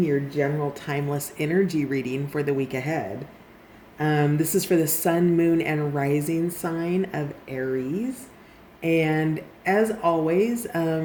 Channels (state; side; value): identical; both; correlation 1.00